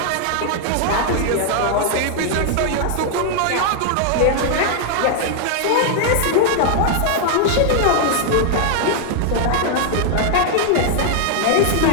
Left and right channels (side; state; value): both; different; correlation 0.00